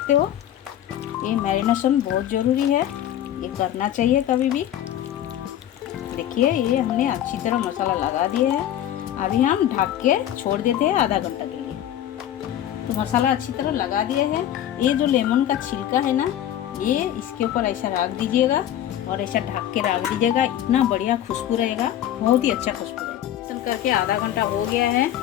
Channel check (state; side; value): quieter; right; 11.5 dB